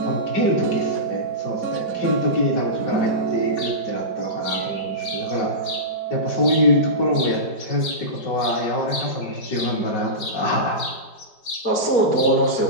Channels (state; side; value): late; right; 5.1 ms